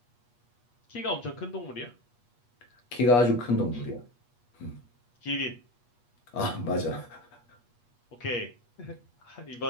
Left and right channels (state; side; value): late; right; 8.4 ms